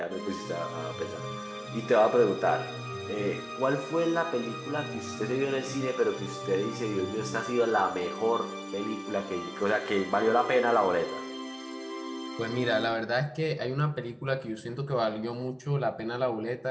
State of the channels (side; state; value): both; identical; correlation 1.00